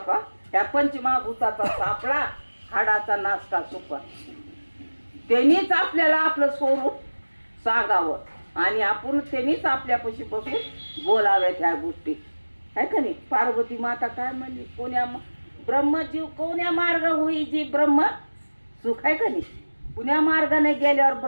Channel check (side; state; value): both; inverted; correlation -1.00